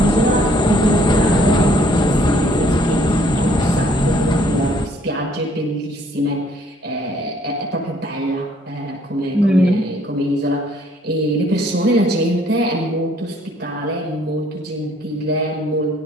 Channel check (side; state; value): both; normal; correlation 0.62